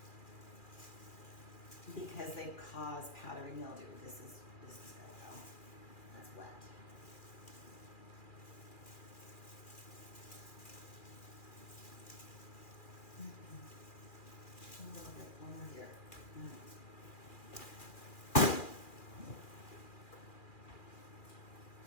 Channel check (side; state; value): right; late; 2.4 ms